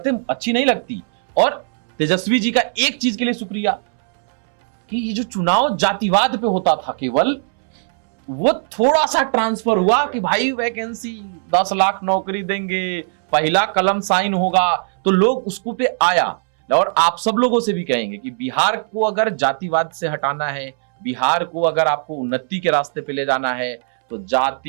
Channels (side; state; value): left; silent; 66 dB below the other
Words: अच्छी नहीं लगती। और तेजस्वी जी का एक चीज के लिए शुक्रिया कि ये जो चुनाव जातिवाद पे होता था केवल, वो थोड़ा सा ट्रांसफर हुआ कि भाई वैकेंसी 10 लाख नौकरी देंगे, पहला कलम साइन होगा, तो लोग उसको पे आया। और आप सब लोगों से भी कहेंगे कि बिहार को अगर जातिवाद से हटाना है, बिहार को अगर आपको उन्नति के रास्ते पे ले जाना है, तो